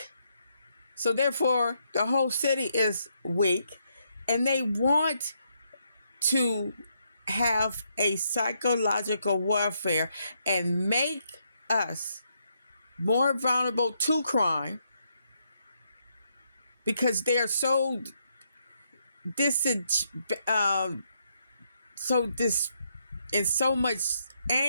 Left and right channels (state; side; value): inverted; both; correlation -0.77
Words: So therefore, the whole city is weak. And they want to have a psychological warfare and make us more vulnerable to crime because they're so in so much